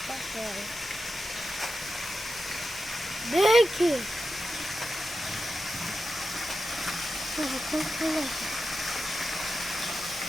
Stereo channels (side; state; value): both; normal; correlation 0.90